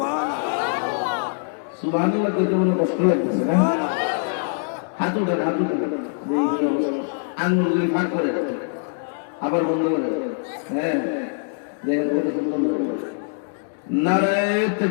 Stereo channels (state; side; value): silent; right; 60 dB below the other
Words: সুবহানাল্লাহ কইতে মনে কষ্ট লাগতেছে না? হাত উঠান, হাত উঠান, আঙ্গুলগুলি ফাঁক করে আবার বন্ধ করে। হ্যাঁ দেখেন কত সুন্দর। নারায়ে